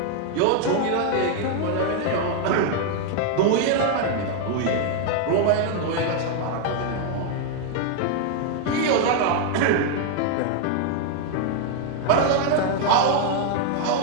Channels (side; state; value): both; different; correlation 0.00